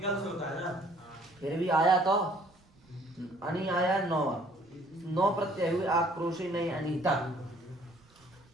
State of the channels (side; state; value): right; noise; rumble, 30 dB below the sound